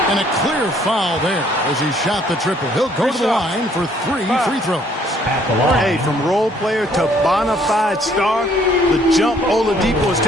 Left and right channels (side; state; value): both; normal; correlation 0.63